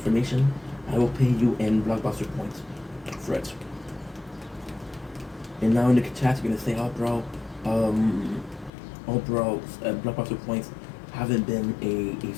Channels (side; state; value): right; drops out; at 8.7 s